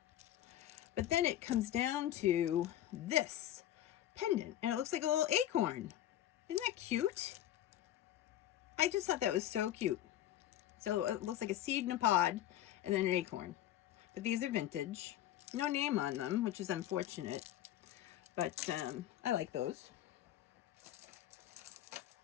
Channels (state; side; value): quieter; right; 12.4 dB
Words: But then it comes down to this pendant, and it looks like a little acorn. Isn't that cute? I just thought that was so cute. So it looks like a seed in a pod and then an acorn. But these are vintage. No name on them, which is unfortunate. But I like those.